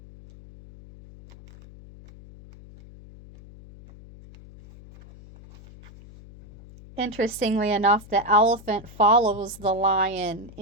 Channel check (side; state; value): left; noise; hum, 20 dB below the sound